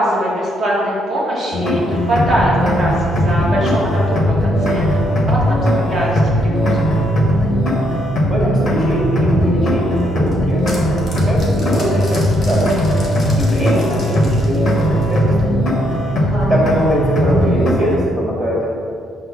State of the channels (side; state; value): both; normal; correlation 0.74